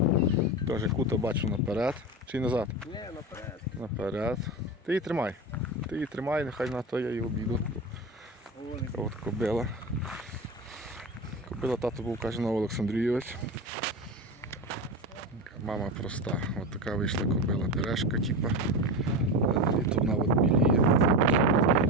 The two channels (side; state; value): both; normal; correlation 0.22